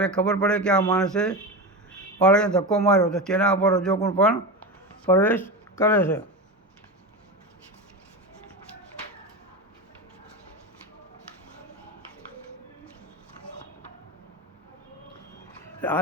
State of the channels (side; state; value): both; normal; correlation 0.21